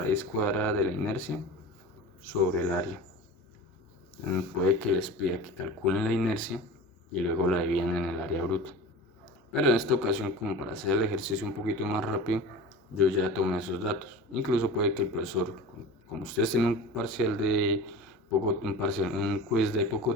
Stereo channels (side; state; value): both; normal; correlation 0.35